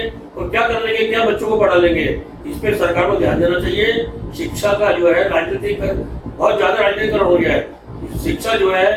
और क्या कर लेंगे, क्या बच्चों को पढ़ा लेंगे? इस पे सरकार को ध्यान देना चाहिए। शिक्षा का जो है राजनीतिक बहुत ज्यादा राजनीतिकरण हो गया है। शिक्षा जो है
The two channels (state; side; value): identical; both; correlation 1.00